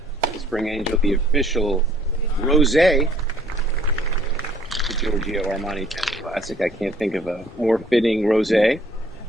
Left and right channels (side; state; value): both; normal; correlation 0.59